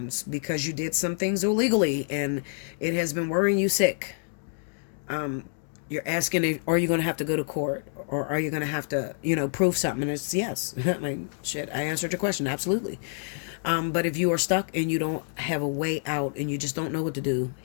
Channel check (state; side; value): silent; right; digital silence